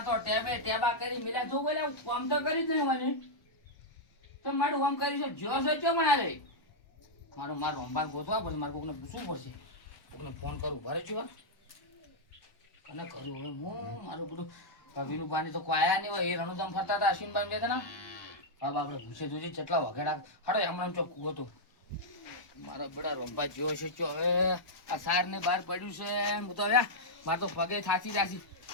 તો ટેબા કરી મેળ્યા જો બોલે કામ તો કરી જ નહીં મને તો મારું કામ કરી છે જો છે ચો મને રે મારું રોમભાઈ ગોતવા પડશે. મારે કોકને પૂછવું પડશે. કોકને ફોન કરું ભરે છું કને કરું હવે હું મારું બધું વિનુ પાણી તો કોઈ આયા નહીં હોય. એ રણુજામ ફરતા હતા અશ્વિનભાઈ બે હતા. હવે આપણે પૂછે જોજે કેટલા વગેડા હાડો હમણાં ચોખ્ખું હતું. મારો બેડા રોમભાઈ જોયો છે ચો હવે આ સાર ને બહાર પડ્યું છે. હું તો હવે મારે તો પગે થાકી જાશી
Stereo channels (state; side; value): late; right; 1.1 ms